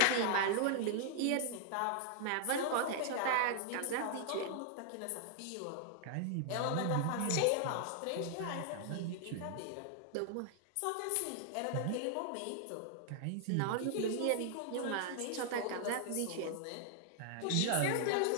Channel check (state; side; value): different; both; correlation 0.00